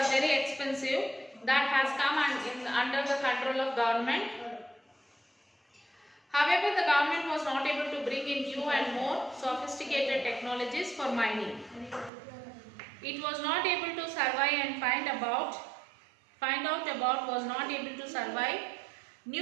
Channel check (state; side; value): drops out; left; at 12.1 s